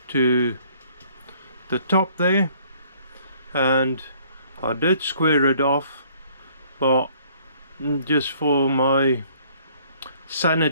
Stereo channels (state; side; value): inverted; both; correlation -0.59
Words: to the top there, and I did square it off, but just for my